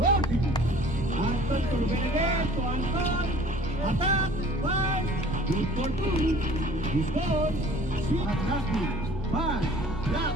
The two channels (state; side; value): normal; both; correlation 0.50